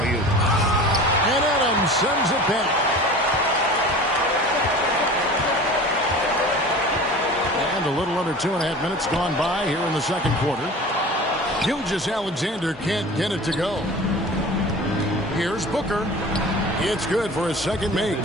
And Adams sends it back. And a little under 2.5 minutes gone by here in the second quarter. Gilgeous-Alexander can't get it to go. Here's Booker. It's good for his second make.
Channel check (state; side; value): normal; both; correlation 0.38